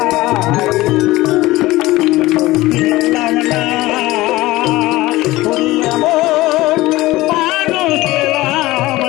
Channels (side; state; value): right; quieter; 18.5 dB